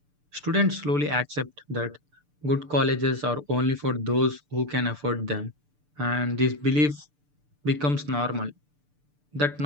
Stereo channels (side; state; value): left; late; 6.8 ms